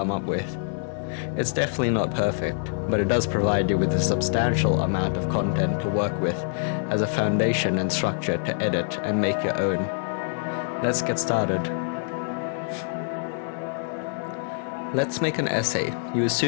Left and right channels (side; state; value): right; silent; digital silence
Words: up with. It's definitely not perfect, but it does provide you with a substantial amount of content to work with as a foundation and structure to edit and make your own. Let's get started. Let's make an essay. You